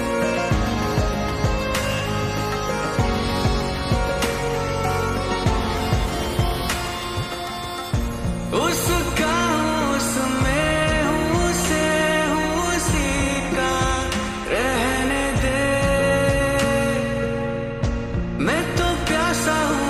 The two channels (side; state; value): both; identical; correlation 1.00